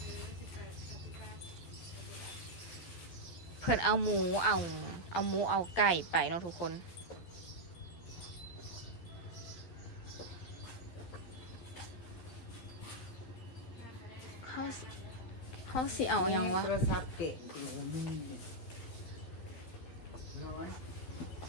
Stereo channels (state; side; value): late; right; 12 ms